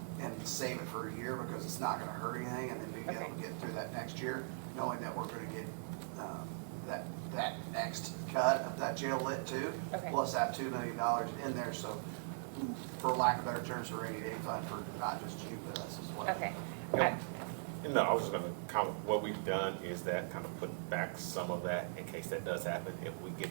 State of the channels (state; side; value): silent; left; digital silence